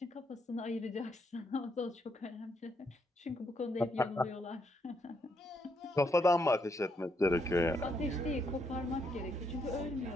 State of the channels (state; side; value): normal; both; correlation 0.76